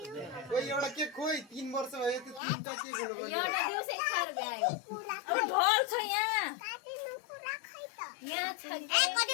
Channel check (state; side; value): drops out; right; at 2.4 s